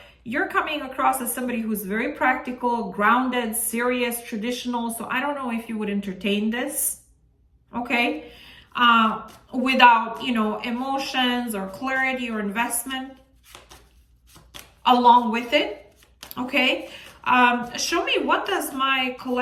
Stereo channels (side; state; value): both; identical; correlation 1.00